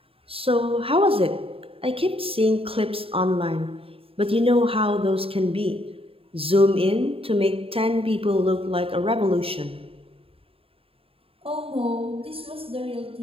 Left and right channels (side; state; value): left; late; 0.27 ms